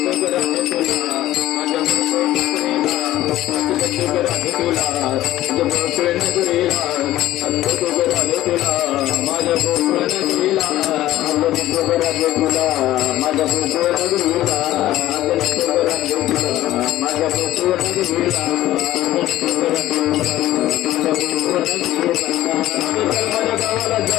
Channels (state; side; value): quieter; right; 14.7 dB